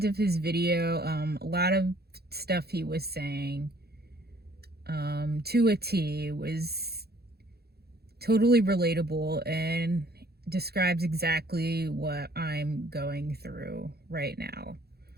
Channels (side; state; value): left; late; 0.46 ms